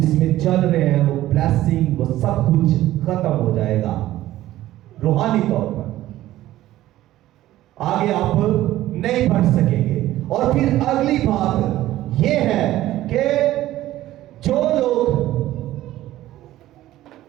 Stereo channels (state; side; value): quieter; left; 14.7 dB